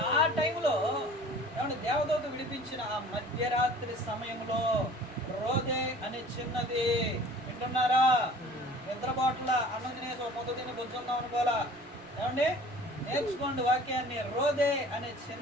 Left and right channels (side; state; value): right; noise; rumble, 28 dB below the sound